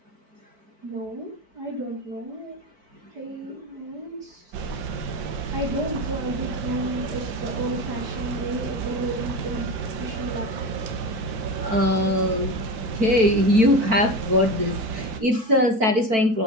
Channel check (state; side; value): late; left; 4.5 ms